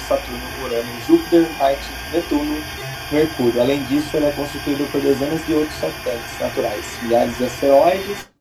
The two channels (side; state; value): both; identical; correlation 1.00